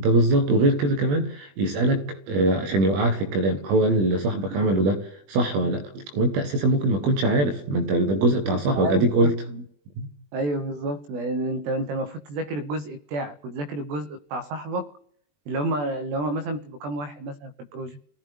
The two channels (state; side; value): late; left; 21 ms